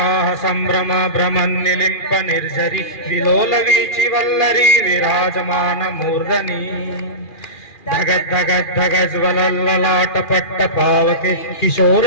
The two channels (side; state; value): right; late; 2.4 ms